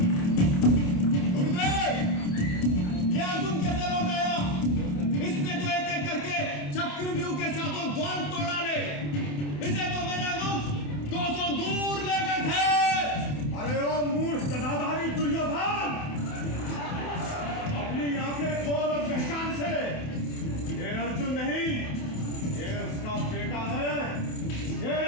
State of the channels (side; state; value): right; late; 28 ms